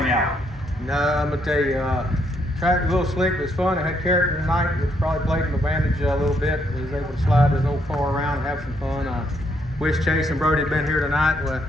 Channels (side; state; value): both; normal; correlation 0.73